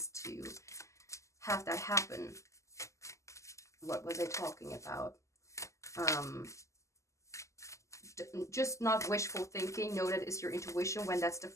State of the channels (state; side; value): late; right; 0.15 ms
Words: to have that happen. What was I talking about? Just not wishful thinking. Know that it's your intuition when that's the